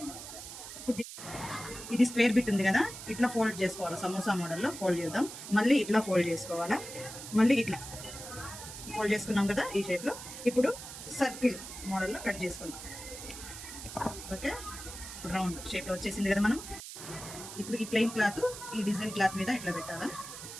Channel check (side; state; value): right; noise; hiss, 11 dB below the sound